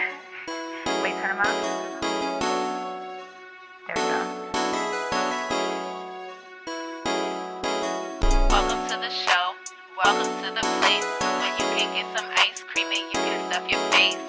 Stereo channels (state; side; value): identical; both; correlation 1.00